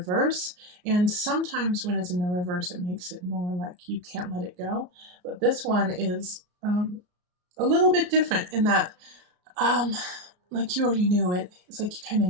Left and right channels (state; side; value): late; left; 33 ms